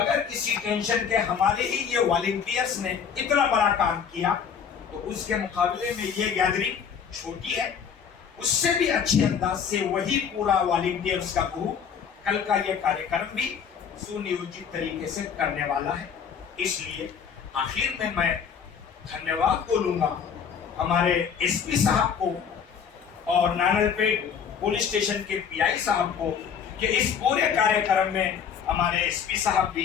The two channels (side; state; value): right; quieter; 7.2 dB